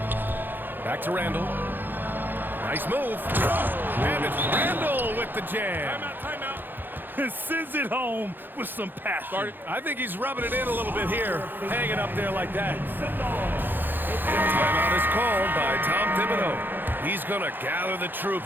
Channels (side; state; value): left; late; 0.093 ms